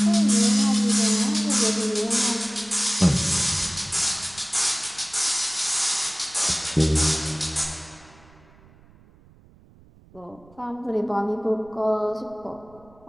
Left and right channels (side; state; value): right; noise; rumble, 26 dB below the sound